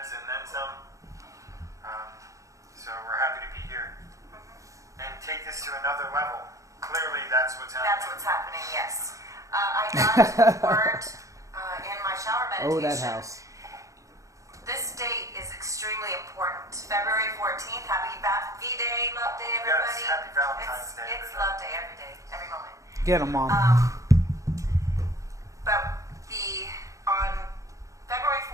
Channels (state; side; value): late; left; 0.15 ms